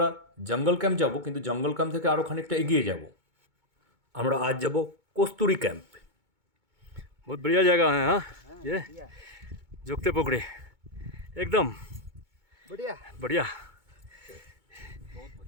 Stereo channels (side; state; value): left; late; 2.2 ms